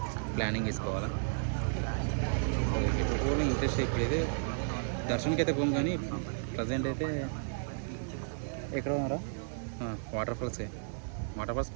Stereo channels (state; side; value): silent; left; digital silence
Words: ప్లానింగ్ వేసుకోవాలా. సో ఇప్పుడు కూడా ఇంట్రెస్ట్ ఇప్పుడైతే దర్శనానికి అయితే పోం, కానీ ప్రజెంట్ అయితే ఎక్కడ ఉన్నారా వాటర్ ఫాల్స్